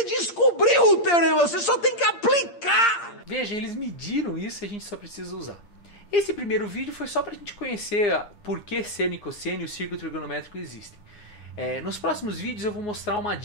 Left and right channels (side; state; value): right; late; 8.6 ms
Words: descobriu o teorema, você só tem que aplicar! Veja, eles mediram isso e a gente só precisa usar. Esse primeiro vídeo foi só para a gente conhecer por que seno e cosseno e o círculo trigonométrico existem. Nos próximos vídeos eu vou mostrar uma